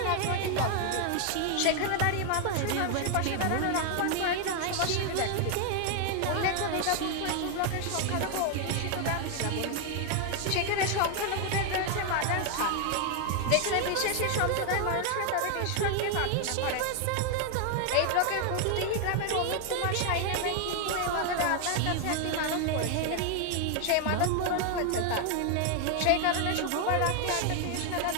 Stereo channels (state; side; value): different; both; correlation 0.00